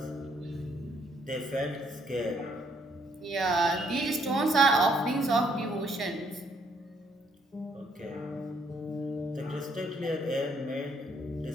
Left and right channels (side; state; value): both; normal; correlation 0.68